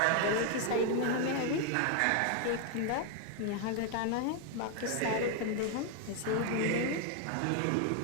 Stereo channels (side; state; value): both; different; correlation 0.01